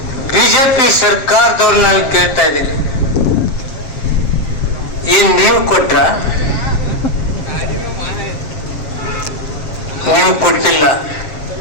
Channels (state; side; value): late; right; 7.4 ms